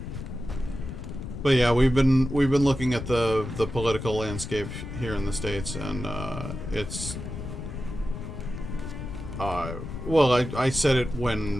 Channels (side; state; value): left; noise; rumble, 8 dB below the sound